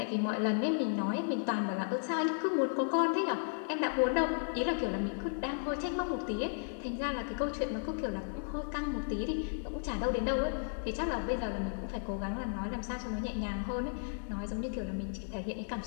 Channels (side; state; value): right; silent; 55 dB below the other